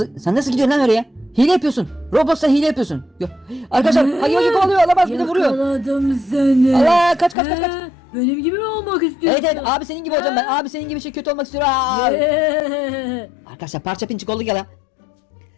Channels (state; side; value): drops out; right; at 7.4 s